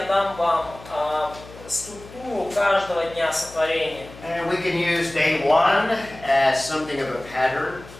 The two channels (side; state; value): left; noise; hum, 18 dB below the sound